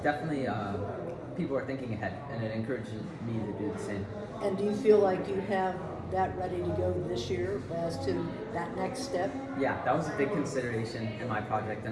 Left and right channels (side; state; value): both; identical; correlation 1.00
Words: definitely people are thinking ahead, and it encourages me to do the same. And do you feel like you have that ready to go this year as to that next step? Yeah, that was a big consideration in my project,